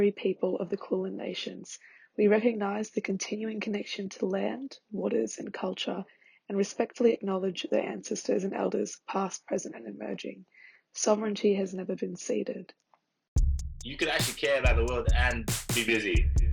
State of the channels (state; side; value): identical; both; correlation 1.00